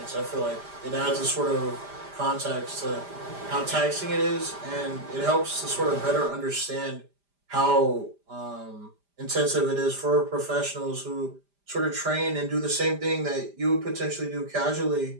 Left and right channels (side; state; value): left; late; 5.0 ms